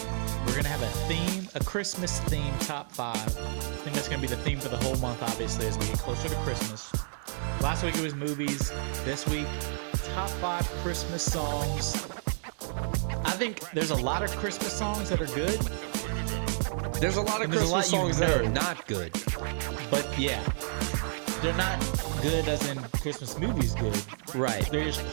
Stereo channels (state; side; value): silent; left; 58 dB below the other